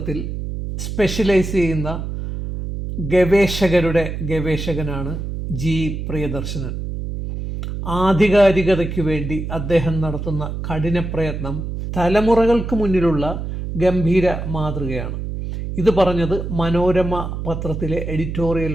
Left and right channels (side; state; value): right; noise; hum, 5 dB below the sound